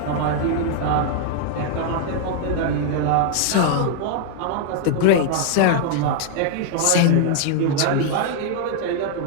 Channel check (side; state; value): both; different; correlation 0.00